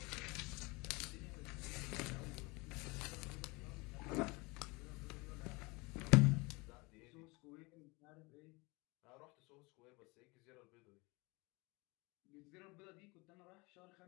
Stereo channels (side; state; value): right; quieter; 26.0 dB